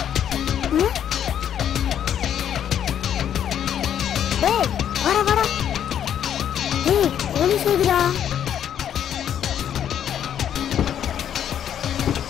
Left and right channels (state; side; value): quieter; right; 9.6 dB